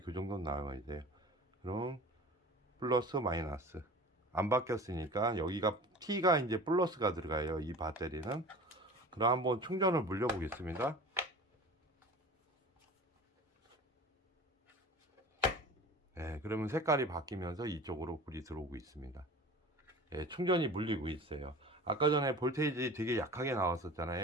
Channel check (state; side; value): normal; both; correlation 0.39